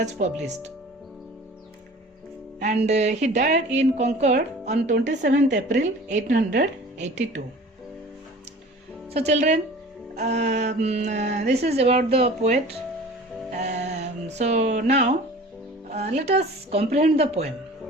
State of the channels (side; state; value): both; normal; correlation 0.43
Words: published. And he died in Concord on 27th April 1882. So children, this is about the poet. So now, let us comprehend the poem.